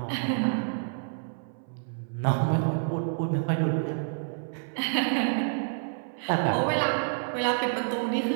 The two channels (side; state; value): left; silent; 59 dB below the other